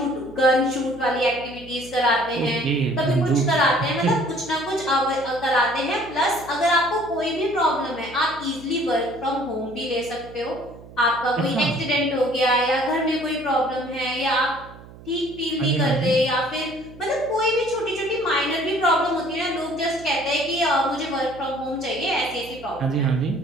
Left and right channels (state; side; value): noise; right; hum, 19 dB below the sound